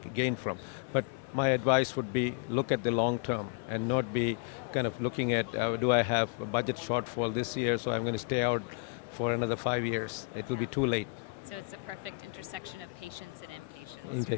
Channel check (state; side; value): quieter; right; 32.7 dB